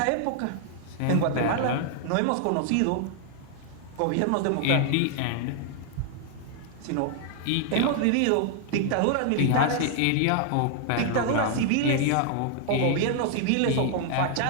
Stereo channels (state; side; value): different; both; correlation 0.00